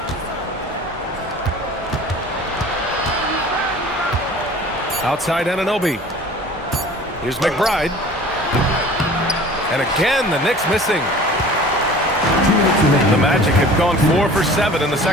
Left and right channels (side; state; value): both; normal; correlation 0.44